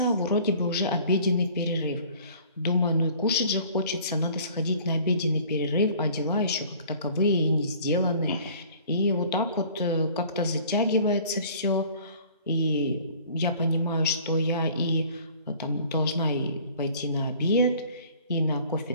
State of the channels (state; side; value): inverted; both; correlation -0.51